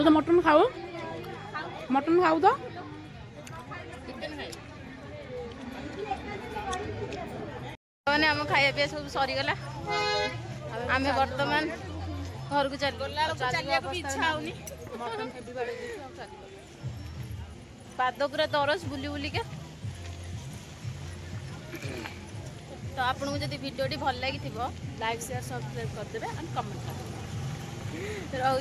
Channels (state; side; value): identical; both; correlation 1.00